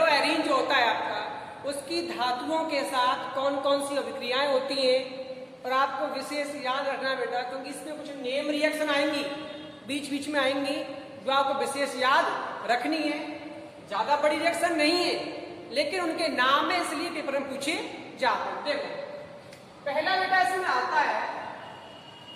एरीन जो होता है आपका, उसकी धातुओं के साथ कौन कौन सी अभिक्रियाएं होती हैं। और आपको विशेष याद रखना बेटा, क्योंकि इसमें कुछ नेम रिएक्शन आएंगी बीच बीच में आएंगी जो आपको विशेष याद रखनी है। ज्यादा बड़ी रिएक्शन नहीं है, लेकिन उनके नाम है इसलिए पेपर में पूछे जाते हैं। देखो पहला बेटा इसमें आता है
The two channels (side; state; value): both; identical; correlation 1.00